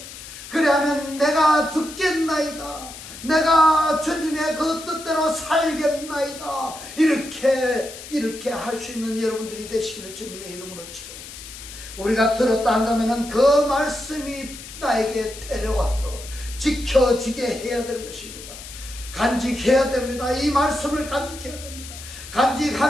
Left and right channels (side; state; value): left; noise; hiss, 13 dB below the sound